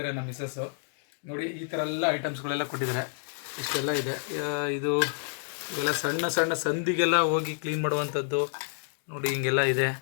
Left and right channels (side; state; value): right; silent; digital silence